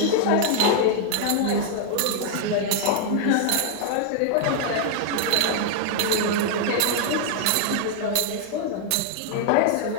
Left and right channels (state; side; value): different; both; correlation 0.00